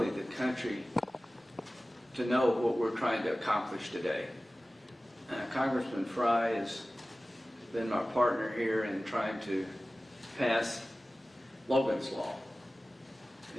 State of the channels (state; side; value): normal; both; correlation 0.97